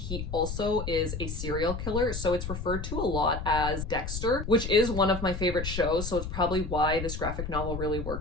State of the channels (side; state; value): left; noise; rumble, 5 dB below the sound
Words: also is a serial killer, so it's referred to a lot as Dexter, which is one of my favorite shows, so it's probably why this graphic novel really